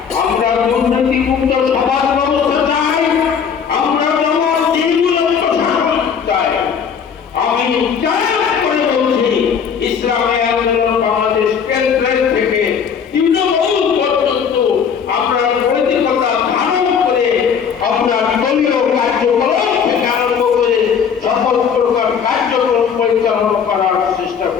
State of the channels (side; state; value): right; quieter; 7.1 dB